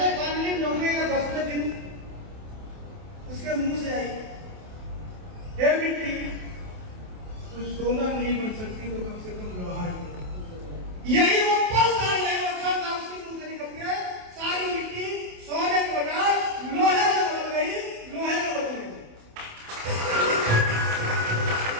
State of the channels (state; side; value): late; left; 28 ms